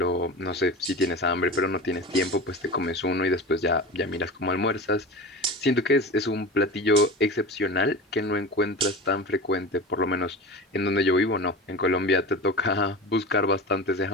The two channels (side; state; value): both; normal; correlation 0.30